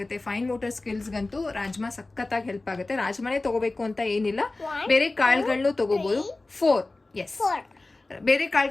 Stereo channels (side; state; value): right; quieter; 3.1 dB